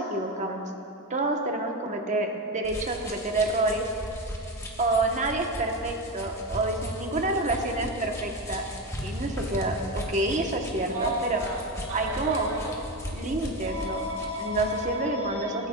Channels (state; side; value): normal; both; correlation 0.17